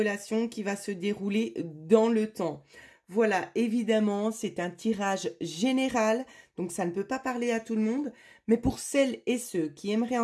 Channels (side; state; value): both; identical; correlation 1.00